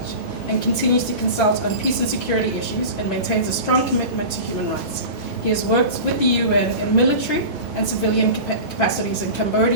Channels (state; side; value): inverted; both; correlation -0.32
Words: and continues to consult on peace and security issues and maintains a strong commitment to human rights. He has worked with the UN in military and civilian capacities in